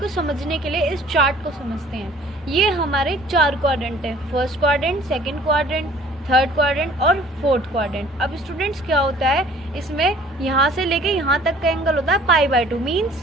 समझने के लिए इस चार्ट को समझते हैं। ये हमारे 4 क्वाड्रेंट है, first quadrant, second quadrant, third quadrant और फोर्थ क्वाड्रेंट। अब स्टूडेंट्स क्या होता है, इसमें यहाँ से लेके यहाँ तक का एंगल होता है π/2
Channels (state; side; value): normal; both; correlation 0.53